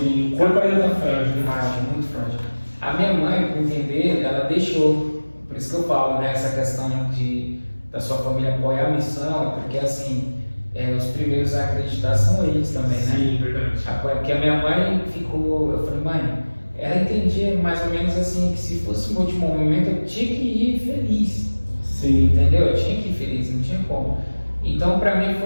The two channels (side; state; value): both; inverted; correlation -1.00